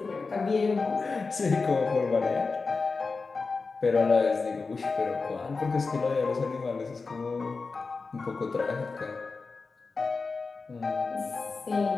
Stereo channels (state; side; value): quieter; right; 4.3 dB